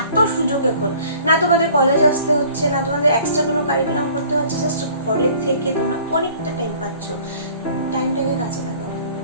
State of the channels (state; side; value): inverted; both; correlation -0.51